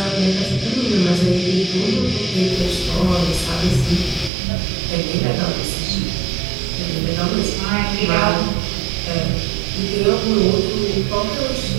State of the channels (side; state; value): left; drops out; at 4.3 s